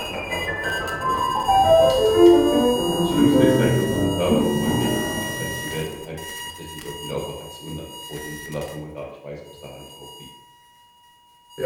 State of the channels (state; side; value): identical; both; correlation 1.00